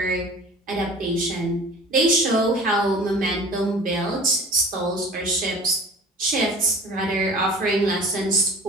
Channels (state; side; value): normal; both; correlation 0.43